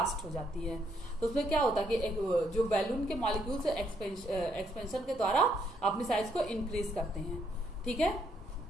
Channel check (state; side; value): noise; right; hum, 29 dB below the sound